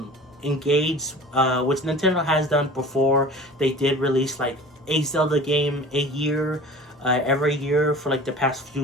engaged, which Nintendo has done before. They did release like a Zelda game a year, every year for like the past few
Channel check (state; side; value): normal; both; correlation 0.41